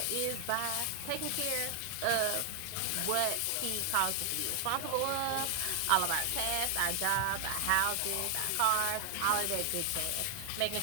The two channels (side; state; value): both; different; correlation 0.00